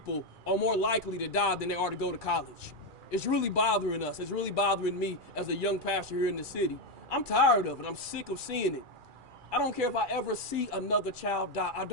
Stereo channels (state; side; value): late; left; 2.4 ms